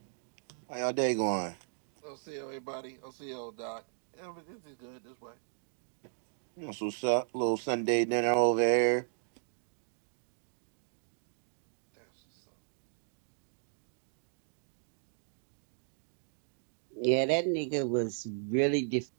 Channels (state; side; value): silent; left; digital silence